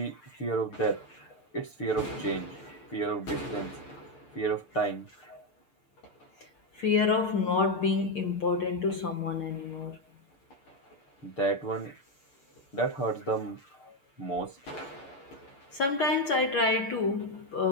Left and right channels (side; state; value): right; late; 6.8 ms